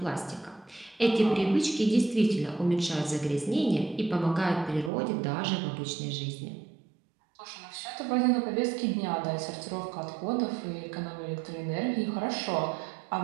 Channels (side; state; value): left; drops out; at 4.9 s